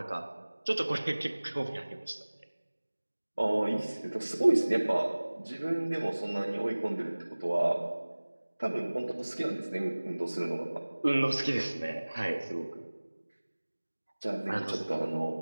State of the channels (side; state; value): both; inverted; correlation -1.00